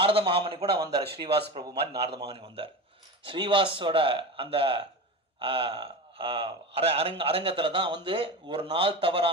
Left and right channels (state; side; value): normal; both; correlation 0.26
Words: மகாமணி கூட வந்தார், ஸ்ரீவாஸ் பிரபு மாதிரி நாரத மகாமணி வந்தார். ஸ்ரீவாஸோட அந்த அரங்கத்துல தான் வந்து ஒரு நாள்